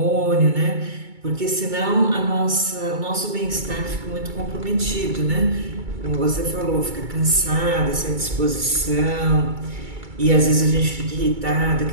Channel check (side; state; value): left; late; 2.3 ms